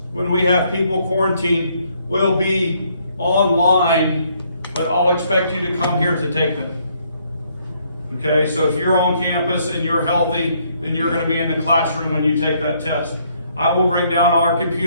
when we have people quarantined, will be online, but I'll expect you to come here to take them. Okay, so if you're on campus and you're healthy, then you're going to be in the classroom when you take that test. I will bring down our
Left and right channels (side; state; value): both; inverted; correlation -0.69